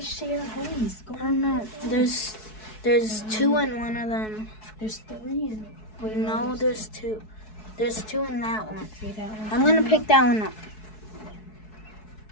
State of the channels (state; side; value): late; right; 4.7 ms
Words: share homes? I don't know. There's 2 in one of them. There's 3 in it. No, there's 2. There's 2 in that one. See that one? I'm gonna pick that one up.